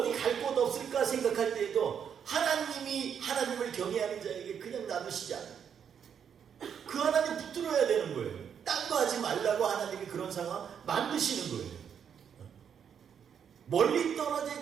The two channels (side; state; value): left; quieter; 7.8 dB